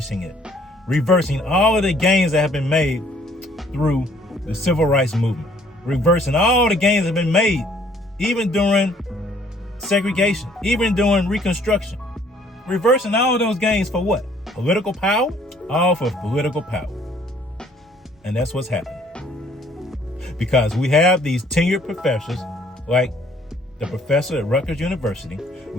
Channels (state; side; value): normal; both; correlation 0.61